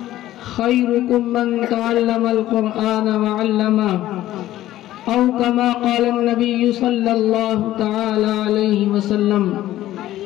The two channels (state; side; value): quieter; right; 14.3 dB